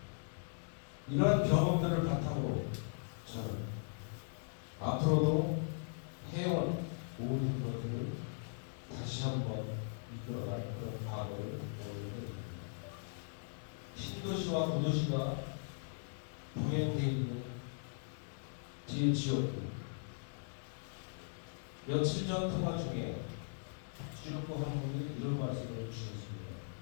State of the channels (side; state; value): right; silent; digital silence